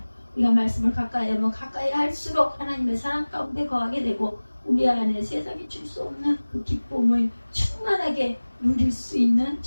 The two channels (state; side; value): inverted; both; correlation -1.00